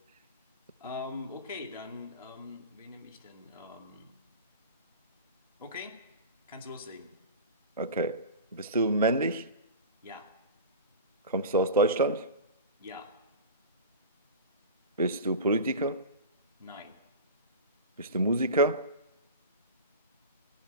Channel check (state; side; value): inverted; both; correlation -0.31